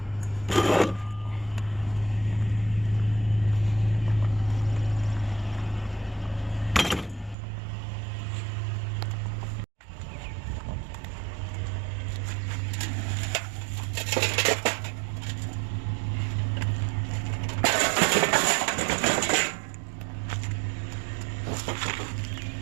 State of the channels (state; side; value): drops out; left; at 7.4 s